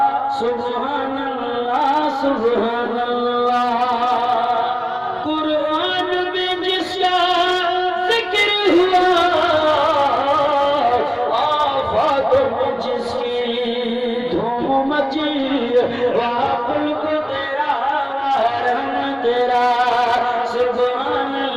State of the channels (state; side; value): identical; both; correlation 1.00